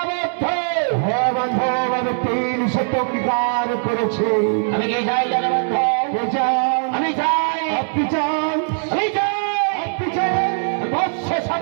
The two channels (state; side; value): silent; left; 66 dB below the other